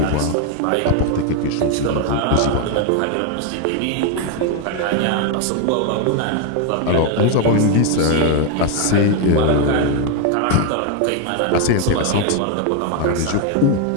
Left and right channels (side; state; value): both; different; correlation 0.01